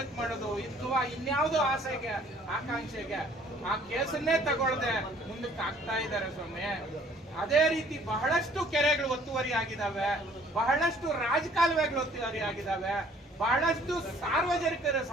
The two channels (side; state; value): both; normal; correlation 0.57